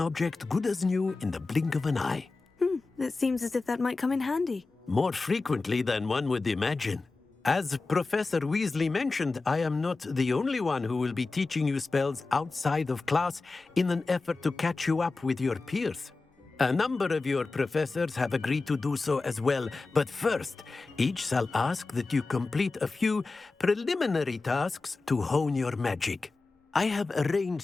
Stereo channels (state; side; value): quieter; right; 3.7 dB